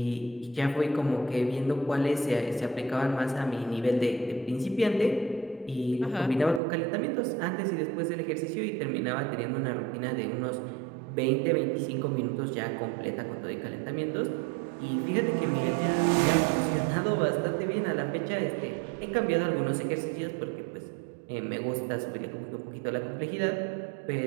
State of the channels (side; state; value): left; drops out; at 6.6 s